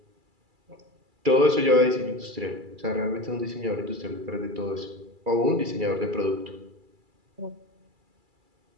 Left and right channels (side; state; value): left; late; 2.3 ms